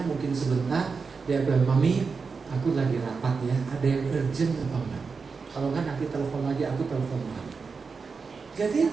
mungkin sebentar. Dia bilang, mami, aku lagi rapat ya, ada yang urgent apa enggak? Kalau enggak nanti telepon lagi, aku telepon lagi.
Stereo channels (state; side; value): quieter; left; 5.0 dB